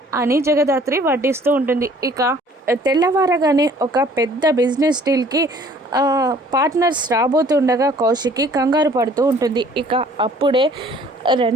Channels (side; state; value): both; normal; correlation 0.55